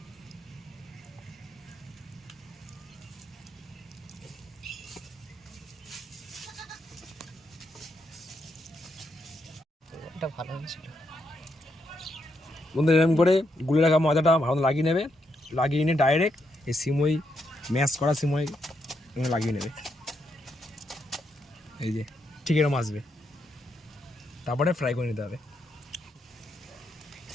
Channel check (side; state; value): both; normal; correlation 0.80